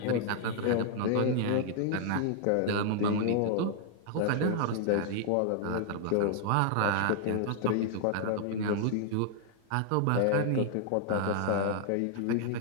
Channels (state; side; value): different; both; correlation -0.01